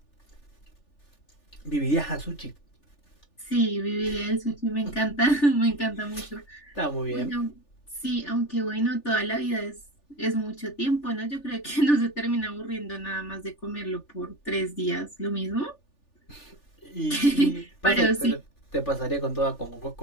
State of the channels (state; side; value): late; right; 3.4 ms